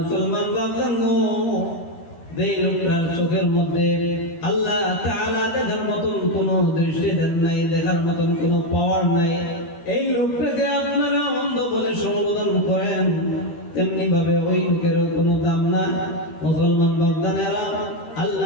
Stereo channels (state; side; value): late; right; 13 ms